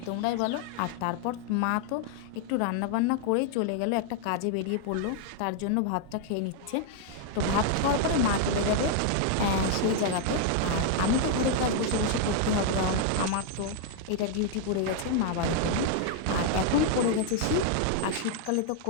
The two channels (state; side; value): different; both; correlation 0.00